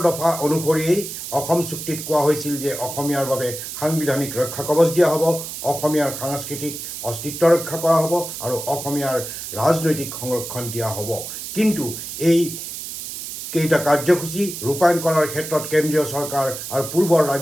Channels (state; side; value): noise; right; hiss, 8 dB below the sound